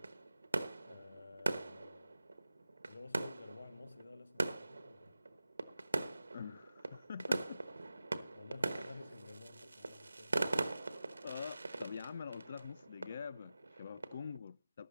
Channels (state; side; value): inverted; both; correlation -0.93